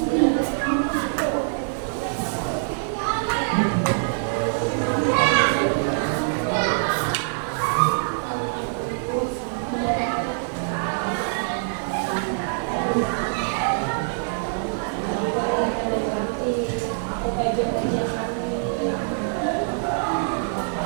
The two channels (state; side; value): silent; left; digital silence